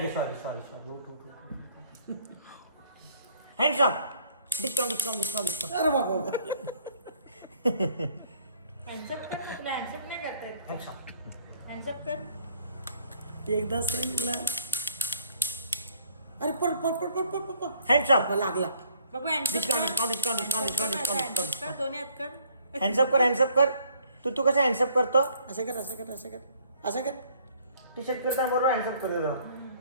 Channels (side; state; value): both; inverted; correlation -0.61